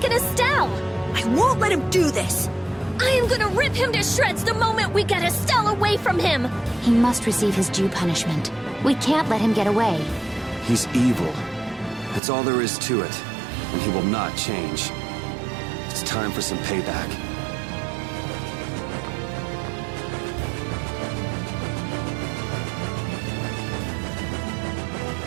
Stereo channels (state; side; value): drops out; left; at 12.2 s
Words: Estelle! I won't let him do this! I am gonna rip him to shreds the moment we get Estelle away from him! He must receive his due punishment. We can't let him get away. He's evil. That's all there is to it. And he will not change. It's time for some payback.